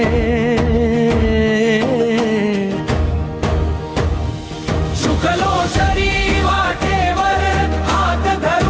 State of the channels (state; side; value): identical; both; correlation 1.00